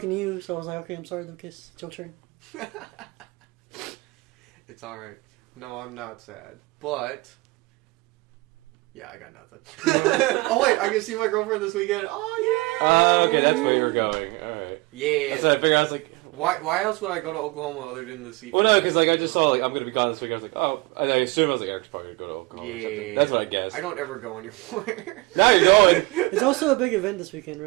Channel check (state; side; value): quieter; left; 23.4 dB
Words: to you, so I was like, okay, I'm sorry, Lucas. It's your turn. It's alright. No, I'm not sad. But... yeah, I got nothing. Oh, wait, I can see my girlfriend this weekend. Oh, yeah! Okay, that's where you're going. Alright. Yeah. So I figured, I was like... Why else would I go to Oklahoma other than to see... Well, no, because I just saw, I'm going to be gone this week. I was like, oh... I assumed I was like, Eric's probably going to go to Oklahoma. Yeah. That's what I guessed. I don't ever go anywhere. Now you're going! It's also a big event this weekend,